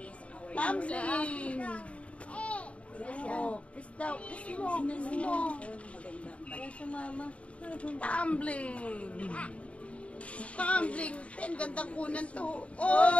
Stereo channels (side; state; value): right; late; 0.063 ms